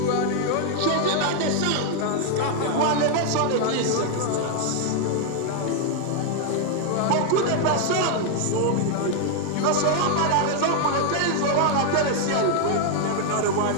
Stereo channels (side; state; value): both; different; correlation 0.00